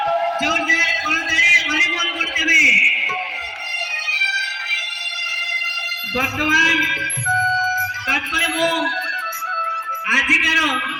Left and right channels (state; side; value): identical; both; correlation 1.00